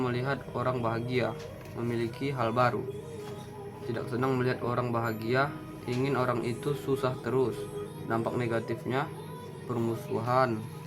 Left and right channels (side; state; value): both; identical; correlation 1.00